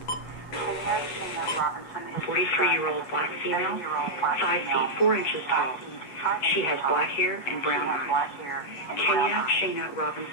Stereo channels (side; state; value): right; late; 8.2 ms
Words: Kenya Shana Robinson is 43-year-old black female, 5 feet 4 inches tall. She has black hair and brown eyes. Kenya Shana